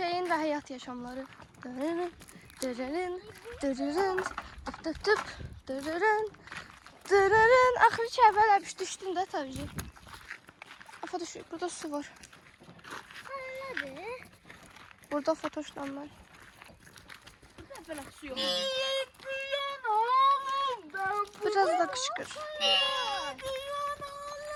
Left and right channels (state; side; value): identical; both; correlation 1.00